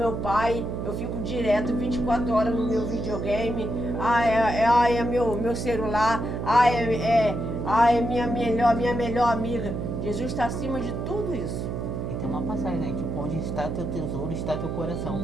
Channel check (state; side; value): noise; right; hum, 4 dB below the sound